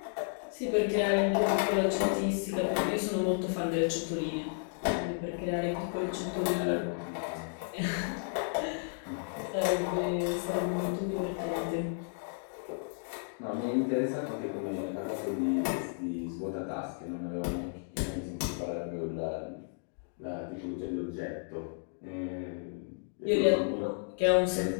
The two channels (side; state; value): right; silent; digital silence